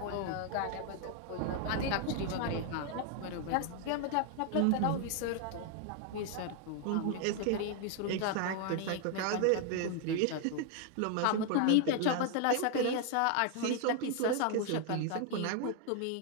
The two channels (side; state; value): both; different; correlation 0.00